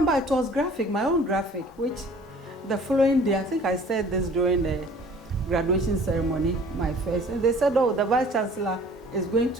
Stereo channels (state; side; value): normal; both; correlation 0.50